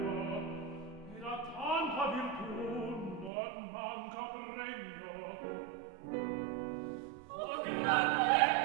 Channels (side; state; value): left; drops out; at 3.3 s